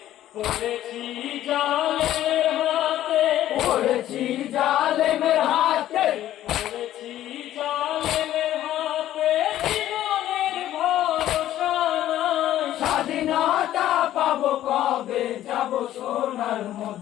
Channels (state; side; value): quieter; right; 12.9 dB